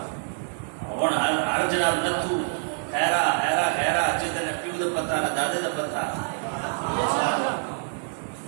ہر جناب نتو خیرا خیرا خیرا جدن پیو دا پتہ نہ دادے دا پتہ،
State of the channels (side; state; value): left; silent; digital silence